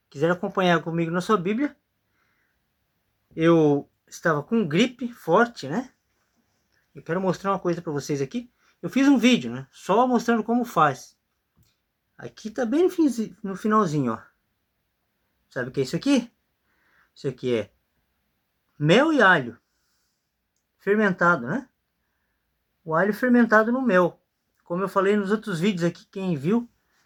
Quiser acompanhar comigo na sua Bíblia. Eu estava com gripe forte, né? Eu quero mostrar uma coisa para vocês aqui. Eu fiz um vídeo, né? Só mostrando como faz. Aqui tá bem no finalzinho, ó. Sabe o que é isso aqui? Isso aqui é mel e alho fermentado, né? O alho fermentado no mel. Como eu falei nos outros vídeos aqui, quem viu,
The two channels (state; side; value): identical; both; correlation 1.00